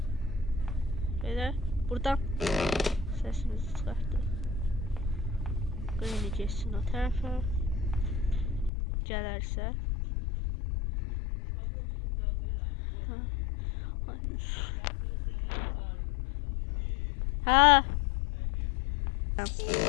Belə buradan səsimizi çıxartdıq. Granny geçsin o tərəfə. Gələrsə. Ha.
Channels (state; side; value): drops out; right; at 8.7 s